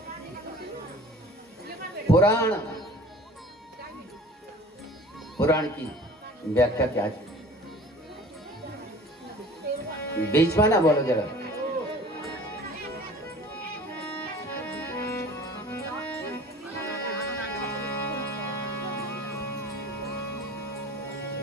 पुराण की व्याख्या क्या है? बीच में ना बोलो जरा।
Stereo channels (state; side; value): normal; both; correlation 0.45